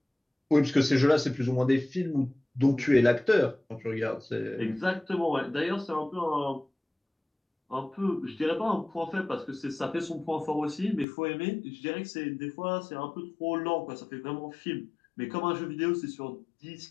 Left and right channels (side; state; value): right; drops out; at 11.1 s